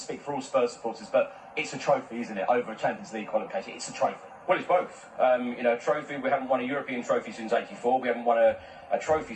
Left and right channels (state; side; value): identical; both; correlation 1.00